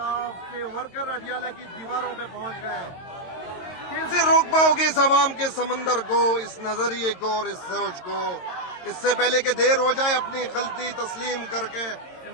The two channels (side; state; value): right; late; 22 ms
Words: के वर्कर अडियाला की दीवारों पे पहुंच गए। कैसे रोक पाओगे इस अवाम के समंदर को, इस नजरिए को और इस सोच को? इससे पहले कि देर हो जाए, अपनी गलती तस्लीम करके